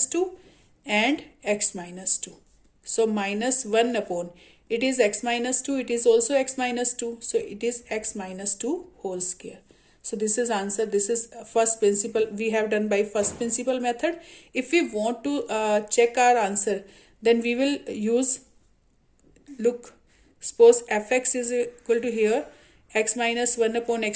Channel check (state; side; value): identical; both; correlation 1.00